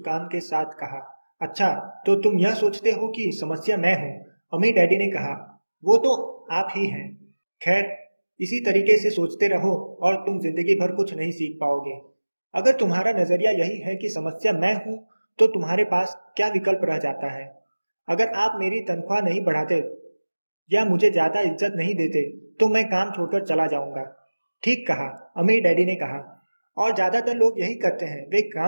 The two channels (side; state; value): both; inverted; correlation -1.00